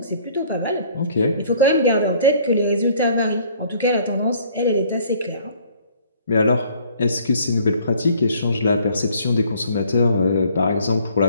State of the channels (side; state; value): both; inverted; correlation -0.57